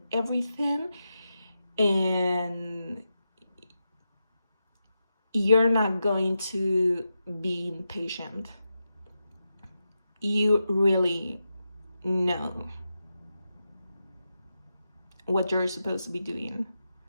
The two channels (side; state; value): both; inverted; correlation -0.89